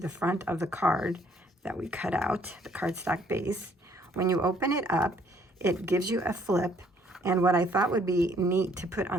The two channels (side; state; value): both; normal; correlation 0.64